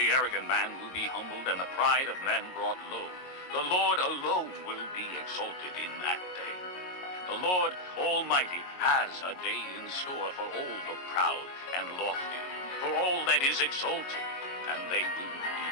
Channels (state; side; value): late; right; 22 ms